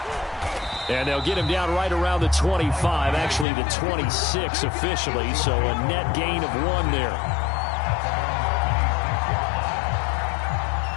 And they'll get him down right around the 25, actually the 26 officially, so a net gain of 1 there.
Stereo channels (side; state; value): right; drops out; at 3.5 s